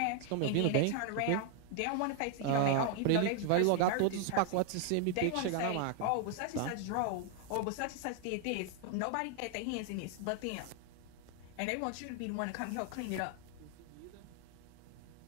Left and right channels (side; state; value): both; different; correlation 0.00